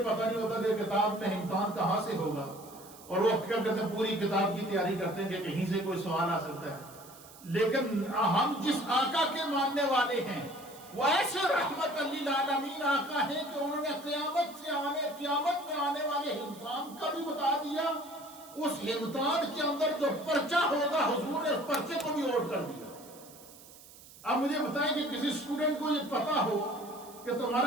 پتہ نہیں ہوتا کہ کتاب میں امتحان کہاں سے ہوگا. اور وہ کیا کرتے ہیں؟ پوری کتاب کی تیاری کرتے ہیں کہ کہیں سے کوئی سوال آ سکتا ہے. لیکن ہم جس آقا کے ماننے والے ہیں وہ ایسے رحمت للعالمین آقا ہیں کہ انہوں نے قیامت میں آنے والے امتحان کا بھی بتا دیا. اس امتحان کے اندر جو پرچہ ہوگا حضور نے اس پرچے کو بھی نوٹ کر دیا. اب مجھے بتائیں کہ کسی اسٹوڈنٹ کو یہ پتا ہو کہ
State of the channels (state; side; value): noise; right; hiss, 20 dB below the sound